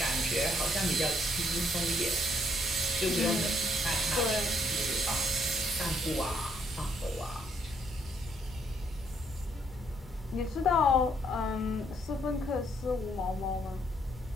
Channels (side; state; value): both; normal; correlation 0.70